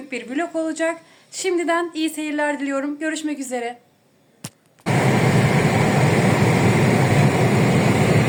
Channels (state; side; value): identical; both; correlation 1.00